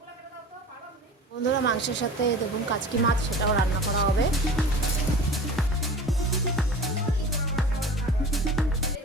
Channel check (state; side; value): normal; both; correlation 0.37